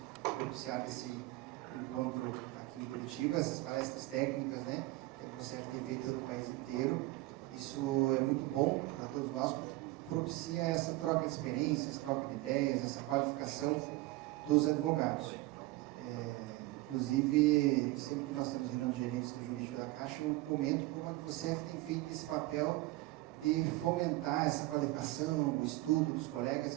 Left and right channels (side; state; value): left; quieter; 19.4 dB